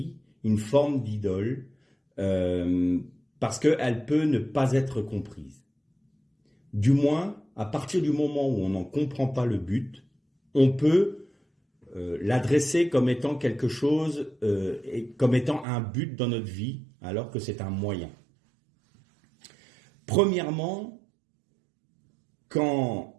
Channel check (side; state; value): left; drops out; at 15.7 s